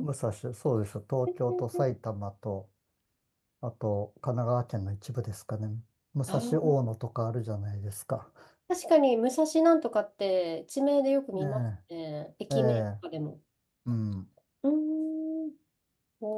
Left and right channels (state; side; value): identical; both; correlation 1.00